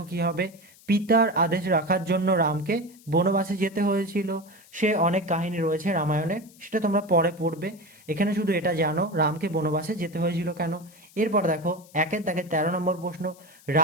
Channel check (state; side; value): noise; left; hiss, 25 dB below the sound